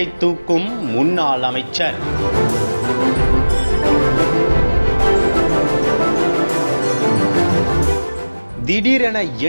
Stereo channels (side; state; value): both; inverted; correlation -1.00